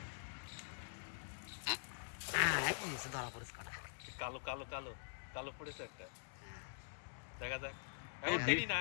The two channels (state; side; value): silent; right; digital silence